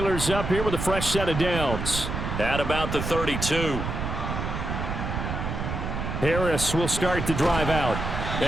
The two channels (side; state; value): right; noise; rumble, 4 dB below the sound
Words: up here with a fresh set of downs. At about the 32. Harris will start the drive out.